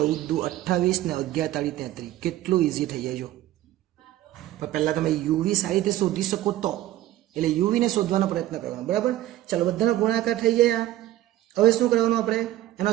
× 28 ને 11 × 33. કેટલું ઇઝી થઈ જાય જો. પણ પહેલા તમે યુવી સારી રીતે શોધી શકો તો, એટલે યુવીને શોધવાનો પ્રયત્ન કરવાનો બરાબર. ચાલો બધાનો ગુણાકાર થઈ જાય. હવે શું કરવાનું આપણે? એનો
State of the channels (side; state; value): left; quieter; 14.5 dB